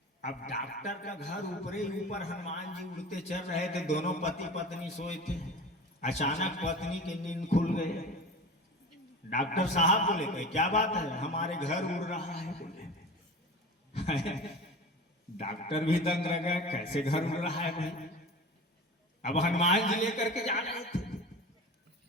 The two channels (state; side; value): normal; both; correlation 0.34